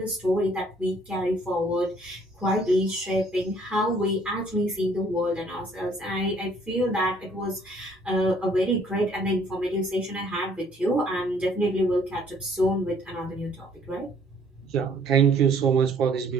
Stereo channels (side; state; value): both; normal; correlation 0.60